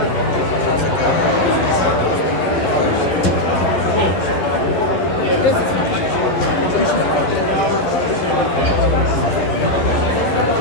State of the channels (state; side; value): late; right; 11 ms